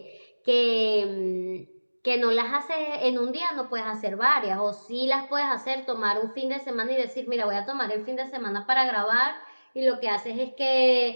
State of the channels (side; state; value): both; inverted; correlation -1.00